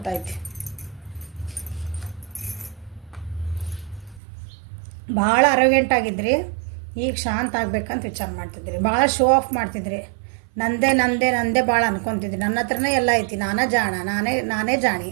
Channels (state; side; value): drops out; left; at 4.2 s